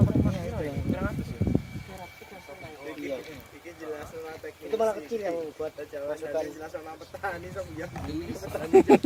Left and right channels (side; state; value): both; identical; correlation 1.00